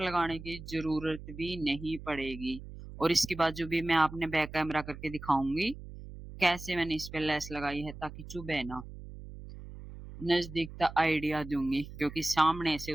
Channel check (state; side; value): noise; right; hum, 13 dB below the sound